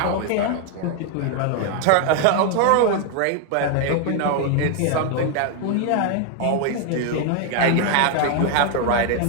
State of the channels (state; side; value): different; both; correlation 0.01